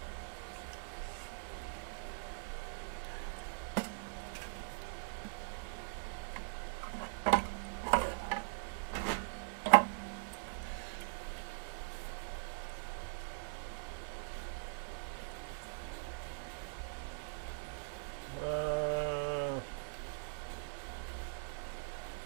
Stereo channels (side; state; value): left; silent; digital silence